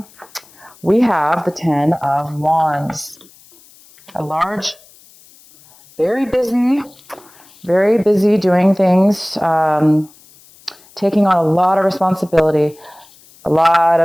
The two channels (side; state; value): left; noise; hiss, 26 dB below the sound